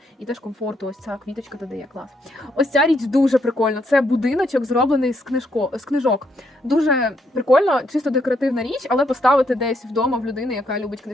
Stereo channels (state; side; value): normal; both; correlation 0.74